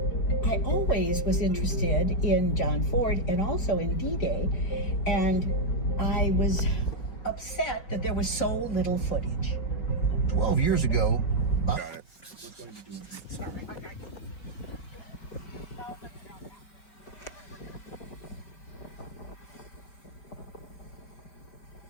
I always was interested in John Ford and also in D-Day, and I was upset that there was so little footage. 12 years ago, Got it.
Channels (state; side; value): late; right; 4.7 ms